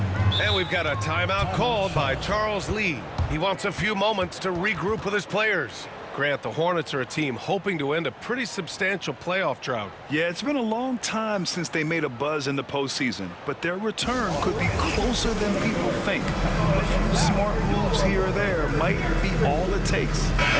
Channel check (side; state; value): both; identical; correlation 1.00